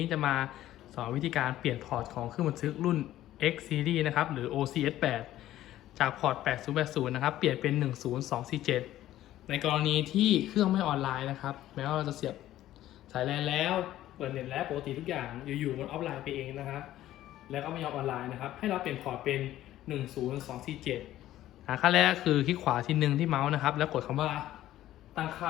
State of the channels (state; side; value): quieter; right; 13.8 dB